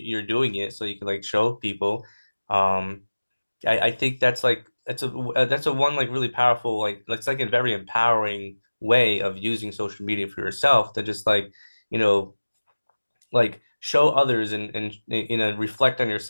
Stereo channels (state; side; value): inverted; both; correlation -1.00